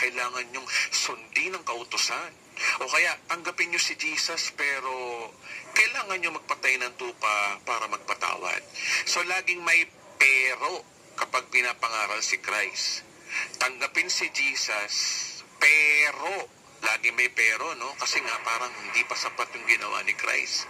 niyong sundin ang kautusan. O kaya, tanggapin niyo si Jesus, pero kailangan niyo magpatay ng tupa para magpatawad. So, laging may pero kapag pinapangaral si Christ. Tanggapin si Jesus, pero lagi may pero, no? Kasi nga parang hindi pa sapat yung ginawa ni Christ.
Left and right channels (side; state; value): both; identical; correlation 1.00